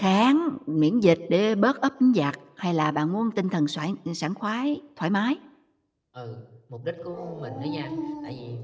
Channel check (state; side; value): identical; both; correlation 1.00